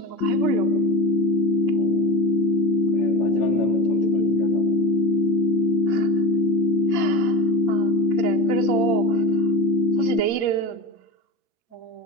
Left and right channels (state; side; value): late; right; 8.7 ms